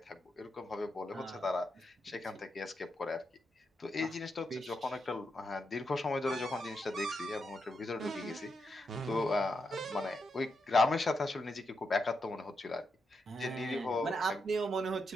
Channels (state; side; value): normal; both; correlation 0.83